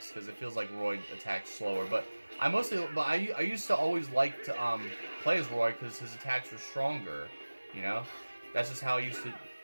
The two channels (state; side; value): inverted; both; correlation -1.00